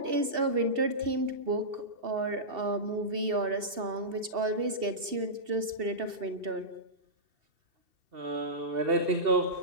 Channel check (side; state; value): left; late; 2.7 ms